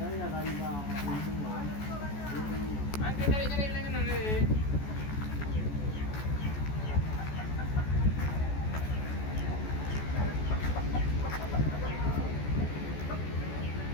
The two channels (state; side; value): late; right; 14 ms